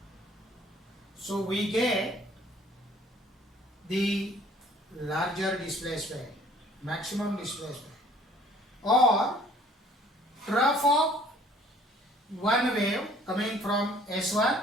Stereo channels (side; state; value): both; normal; correlation 0.56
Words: So we get the larger displacement, maximum displacement, or trough of one wave coming from